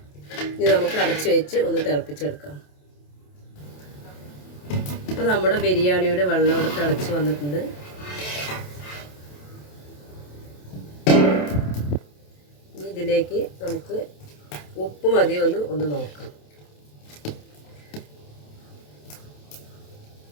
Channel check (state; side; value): late; right; 27 ms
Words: ഇനി നമുക്ക് അടച്ച് വെച്ച് ഒന്ന് തിളപ്പിച്ചെടുക്കാം. അപ്പോൾ നമ്മുടെ ബിരിയാണിയുടെ വെള്ളം ഇവിടെ തിളച്ച് വന്നിട്ടുണ്ട്. ഇതിലേക്ക് നമുക്ക് ഉപ്പ് മതിയോ ഒന്ന് നോക്കാം.